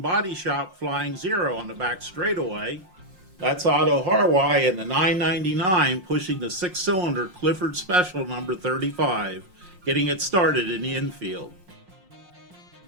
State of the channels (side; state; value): left; late; 5.5 ms